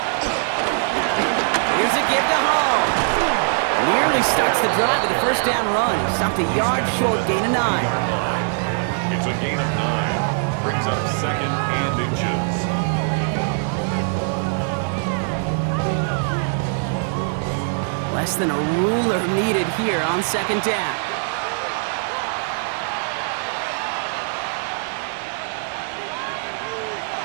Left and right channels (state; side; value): silent; left; 64 dB below the other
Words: Here's a give to Hall. Nearly starts the drive with a first down run. Stopped a yard short, gain of 9. It's a gain of 9. Brings up 2nd and inches. Less than a ruler needed here on 2nd down.